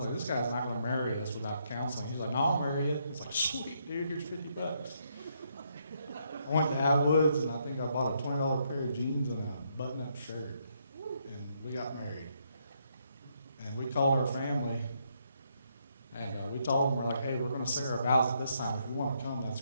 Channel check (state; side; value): inverted; both; correlation -0.74